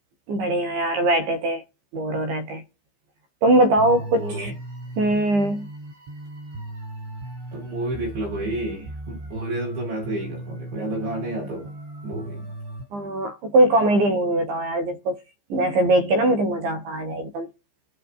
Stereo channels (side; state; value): left; late; 15 ms